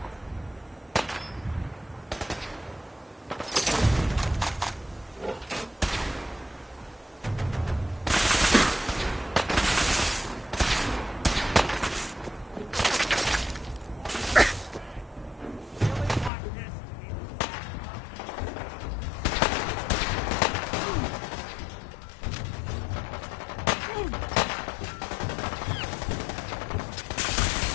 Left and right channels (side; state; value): right; drops out; at 16.3 s